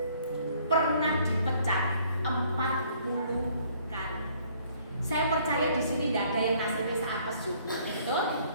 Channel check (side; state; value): both; inverted; correlation -0.61